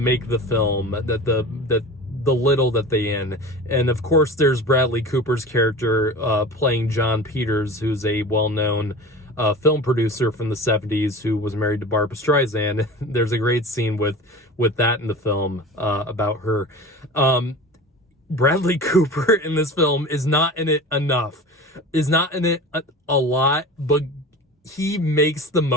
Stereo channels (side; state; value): both; normal; correlation 0.35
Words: the film that the little that they in. And of course, there's Bradley Cooper's character playing John Peters, who's a well-known film producer from the 70s who was married to Barbra Streisand. There's a great scene with that in the film about her. Bradley Cooper in this film is not in it enough, is not in it a lot, but he makes the